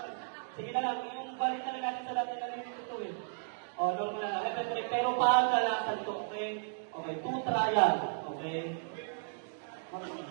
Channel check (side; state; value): left; silent; digital silence